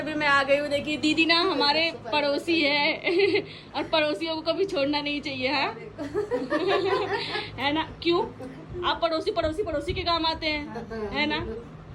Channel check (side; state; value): both; identical; correlation 1.00